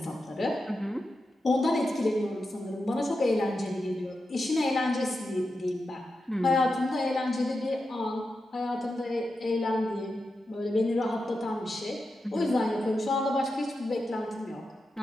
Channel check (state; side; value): normal; both; correlation 0.89